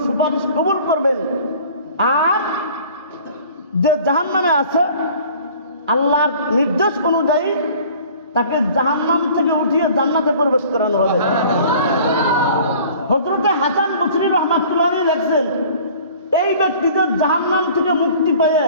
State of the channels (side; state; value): both; inverted; correlation -0.48